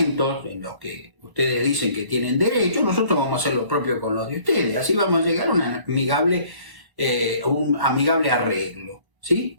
en los que ustedes dicen que tienen derecho, nosotros vamos a hacer lo propio con los de ustedes. Así vamos a llegar a un amigable arreglo, ¿sí?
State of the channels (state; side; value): late; left; 1.0 ms